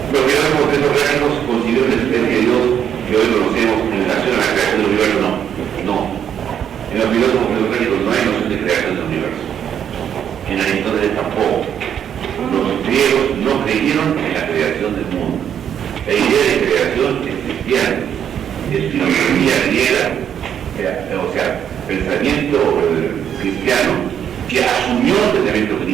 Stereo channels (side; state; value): left; quieter; 9.0 dB